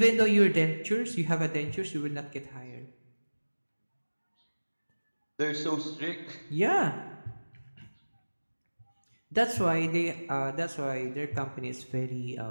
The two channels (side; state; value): both; inverted; correlation -1.00